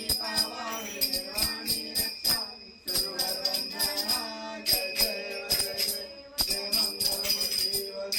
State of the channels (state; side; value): identical; both; correlation 1.00